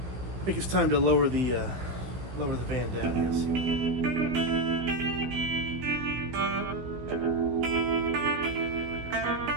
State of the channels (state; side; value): late; left; 16 ms